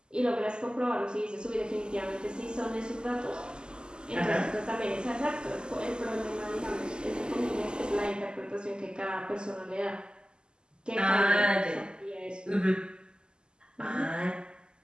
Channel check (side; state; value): left; late; 0.047 ms